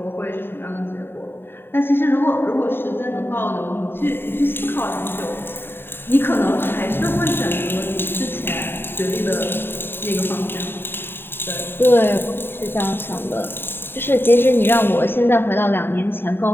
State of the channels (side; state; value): right; late; 0.11 ms